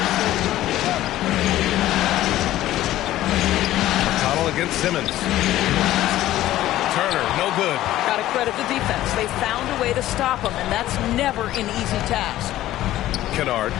McConnell against Simmons. Turner, no good. Got to credit the defense. They found a way to stop him, and that's never an easy task. Kennard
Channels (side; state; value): right; quieter; 14.5 dB